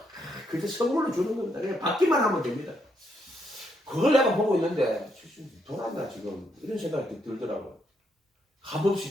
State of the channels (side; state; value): both; normal; correlation 0.76